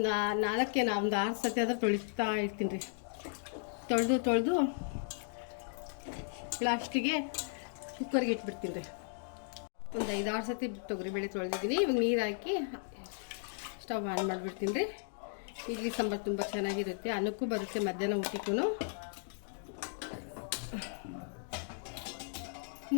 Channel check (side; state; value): right; silent; digital silence